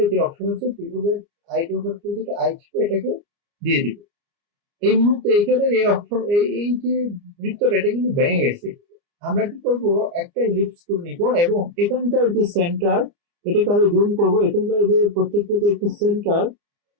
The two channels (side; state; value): left; late; 29 ms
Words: যে অপশন আছে কিবোর্ডের আই ড্রপার টুল থেকে আই চেপে এটাকে দিয়ে দিব। এই মুহূর্তে এখানে এই অপশন এই যে বৃত্তটা এটা কিন্তু ভেঙে গেছে। আমরা কি করব, একটা ইলিপস টুল নিব এবং এখানকার যে সেন্টার এটাকে আরো জুম করবো। এখানকার যে প্রত্যেকটা যে একটা সেন্টার,